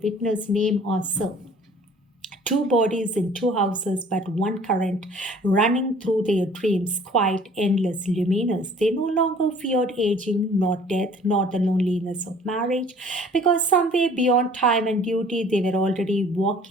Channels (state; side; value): normal; both; correlation 0.52